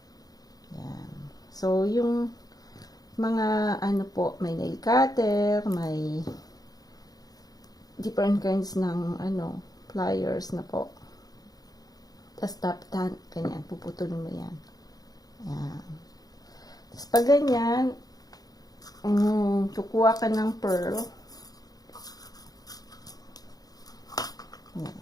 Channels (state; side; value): late; right; 0.18 ms